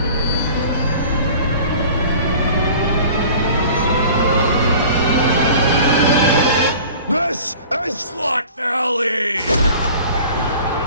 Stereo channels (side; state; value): both; inverted; correlation -0.44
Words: This is Slot Valley!